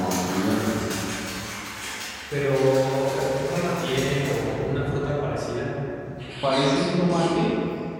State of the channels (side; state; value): both; identical; correlation 1.00